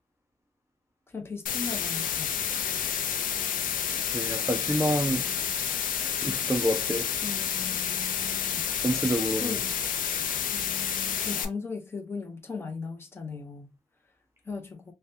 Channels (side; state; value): right; quieter; 4.5 dB